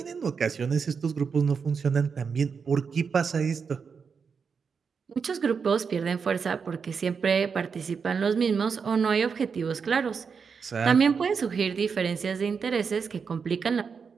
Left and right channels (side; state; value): left; quieter; 5.9 dB